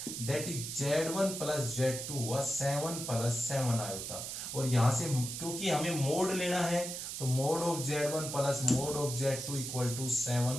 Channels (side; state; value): right; noise; hiss, 6 dB below the sound